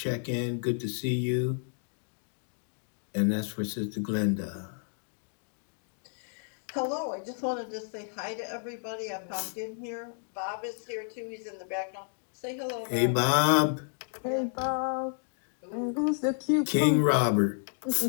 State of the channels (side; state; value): right; silent; 57 dB below the other